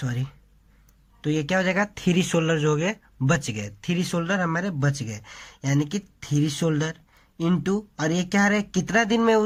तो ये क्या हो जाएगा, 3 शोल्डर जो हो गए बच गए, 3 शोल्डर हमारे बच गए, यानी कि 3 शोल्डर इंटू, और ये क्या है, कितना दिन में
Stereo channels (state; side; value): identical; both; correlation 1.00